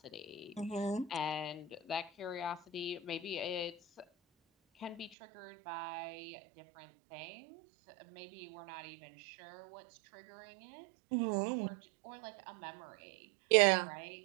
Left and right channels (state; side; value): drops out; left; at 5.2 s